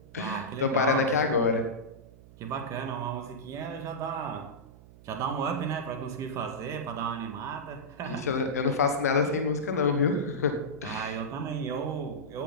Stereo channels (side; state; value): right; noise; hum, 21 dB below the sound